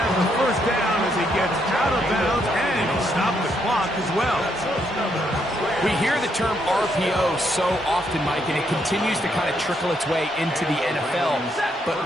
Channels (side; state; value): both; normal; correlation 0.75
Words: have the 1st down as he gets out of bounds, and he stopped the clock as well. We hear the term RPO so often, Mike, and it continues to kind of trickle its way into the NFL. But